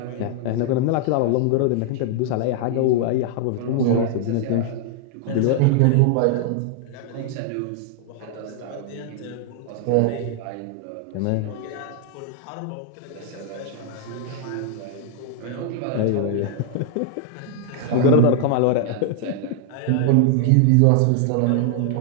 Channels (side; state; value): both; different; correlation -0.01